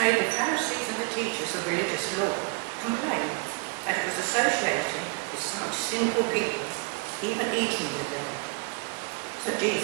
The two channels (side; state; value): left; quieter; 32.6 dB